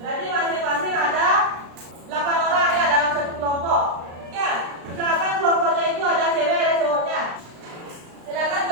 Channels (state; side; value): late; left; 35 ms